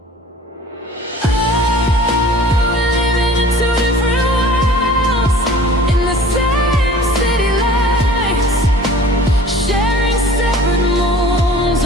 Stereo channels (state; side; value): normal; both; correlation 0.46